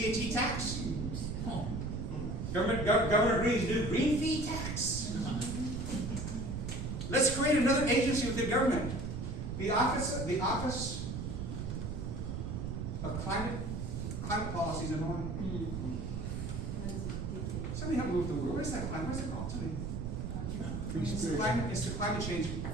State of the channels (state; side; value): noise; right; rumble, 4 dB below the sound